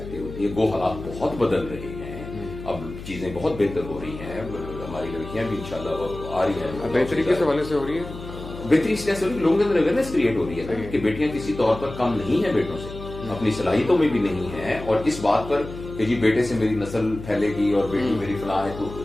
ہوتی ہے. گو حالات بہت بدل رہے ہیں اب چیزیں بہت بہتر ہو رہی ہیں ہماری لڑکیاں بھی انشاءاللہ آ رہی ہیں بہتری کس حوالے سے ہو رہی ہے. بہتری اس لیے سے ہو رہی ہے لوگوں کے اندر اویئرنیس کریٹ ہو رہی ہے نا کہ بیٹیاں کسی طور پر کم نہیں ہیں بیٹوں سے اپنی صلاحیتوں میں بھی نہیں ہیں اور اس بات پر کہ جی بیٹے سے میری نسل پھیلے گی اور بیٹی میری فلاں ہے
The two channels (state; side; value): noise; left; hum, 12 dB below the sound